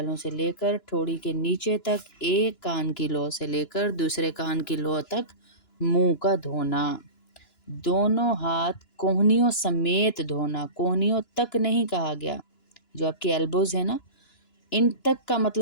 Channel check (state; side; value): late; right; 2.9 ms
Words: سے لے کر ٹھوڑی کے نیچے تک، ایک کان کی لو سے لے کر دوسرے کان کی لو تک منہ کا دھونا۔ دونوں ہاتھ کوہنیوں سمیت دھونا، کوہنیوں تک نہیں کہا گیا، جو آپ کی ایلبوز ہیں نا، ان تک کا